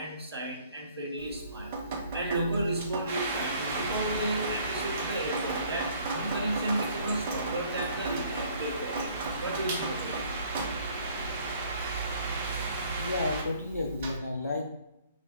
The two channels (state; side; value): inverted; both; correlation -0.59